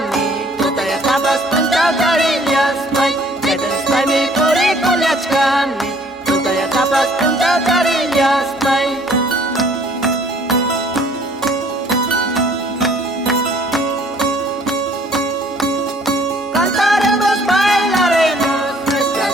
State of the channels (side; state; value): both; normal; correlation 0.58